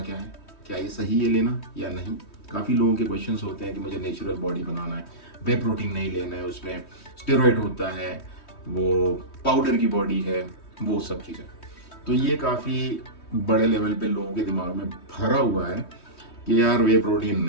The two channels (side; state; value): right; late; 3.2 ms